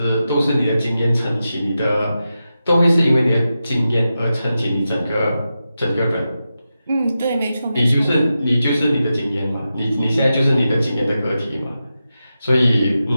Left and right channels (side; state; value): both; inverted; correlation -0.91